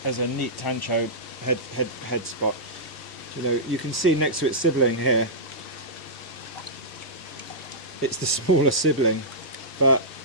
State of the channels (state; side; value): normal; both; correlation -0.14